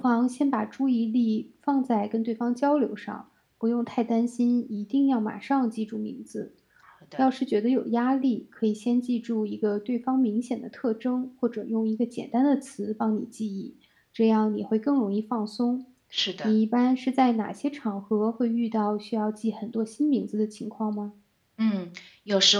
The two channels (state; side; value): identical; both; correlation 1.00